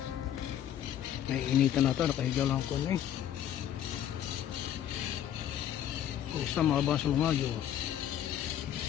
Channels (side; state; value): right; quieter; 10.5 dB